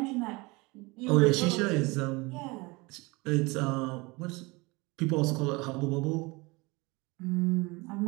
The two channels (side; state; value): left; quieter; 25.0 dB